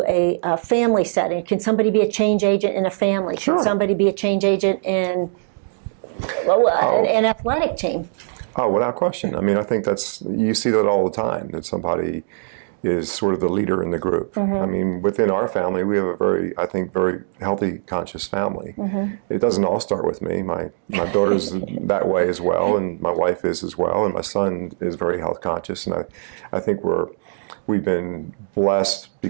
a family setting, can somebody be a change agent in a family? Sure. Can somebody be a change agent in an athletic team? Oh, without question. I mean, I think you see that all the time, that somebody is sort of the leader in the group. I mean, within our family, we have a very healthy, conscious family. It doesn't all start with me. My daughter's that way as well, and my wife is as well, and my son is very health conscious. And I think we've been blessed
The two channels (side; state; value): left; silent; digital silence